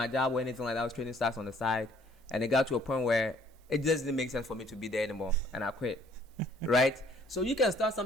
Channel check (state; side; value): normal; both; correlation 0.60